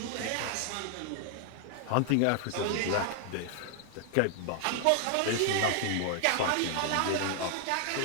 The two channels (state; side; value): different; both; correlation 0.00